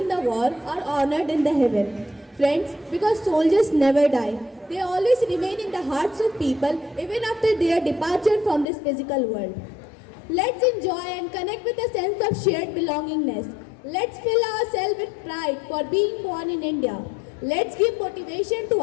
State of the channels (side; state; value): right; drops out; at 8.7 s